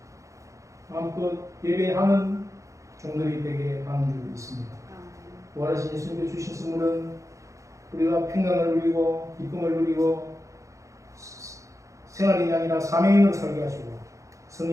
마음껏 예배하는 종들이 되게 하는 줄 믿습니다. 부활하신 예수님께 주신 선물은 우리가 평강을 누리고 기쁨을 누리고 생활인이 아니라 사명인으로 살게 하시고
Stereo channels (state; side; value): late; left; 0.15 ms